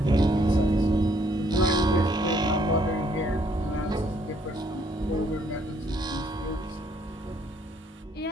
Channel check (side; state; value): both; normal; correlation 0.67